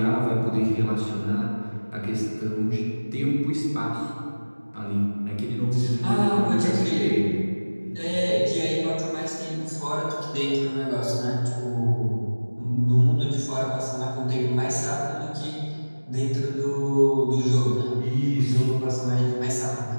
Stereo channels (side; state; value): both; inverted; correlation -1.00